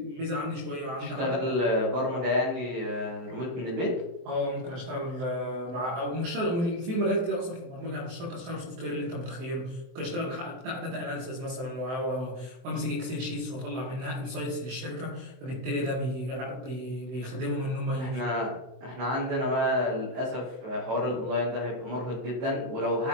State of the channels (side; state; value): left; late; 23 ms